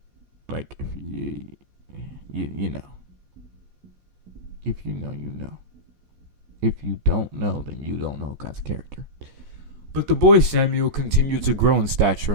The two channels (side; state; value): left; late; 14 ms